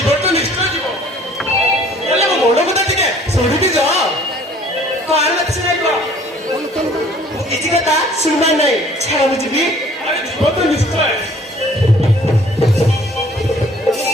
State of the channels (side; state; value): both; normal; correlation 0.55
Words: তো নিশ্চয় জীব বলে মো মন কথা টিকে শুনিবি যা কার মত শুনাইব কিছু কথা শুনবার নাই ছাড়া বুঝবি আরে জীবন তো নিশ্চয়